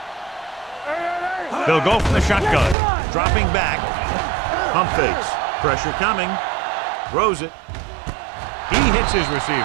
They'll go from the shotgun. Dropping back. Pump fakes. Pressure coming. Throws it. He hits his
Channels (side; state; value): left; drops out; at 2.8 s